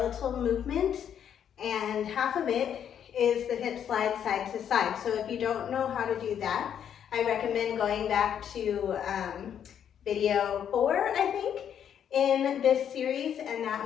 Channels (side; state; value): right; quieter; 9.0 dB